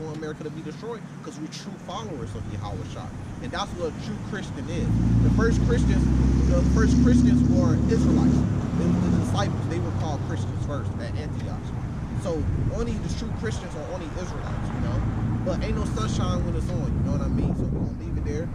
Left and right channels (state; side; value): identical; both; correlation 1.00